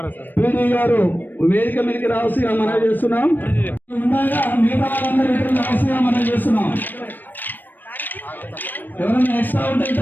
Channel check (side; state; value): right; late; 0.091 ms